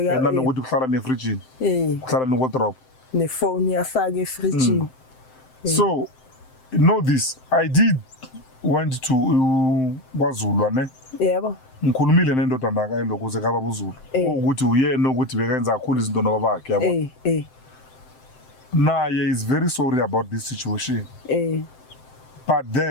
nanokuthi kuhlala nefridge kuhlala newardrobe nefone yafaka efridge so know this I did went to kwaZulu ne yebo ngikhulumile nendodana kayo lokuze kaba buZulu ukuthi uyena ukuthi bekenza kakhulu izinto nobabakhe yabo naye is very sorry about this situation but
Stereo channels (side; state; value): right; late; 7.7 ms